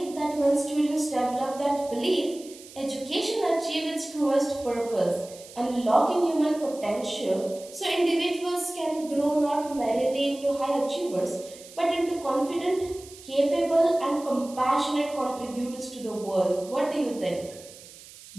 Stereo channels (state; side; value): noise; right; hiss, 19 dB below the sound